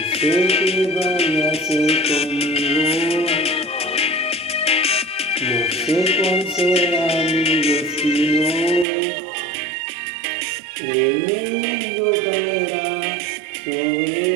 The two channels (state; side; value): drops out; left; at 8.8 s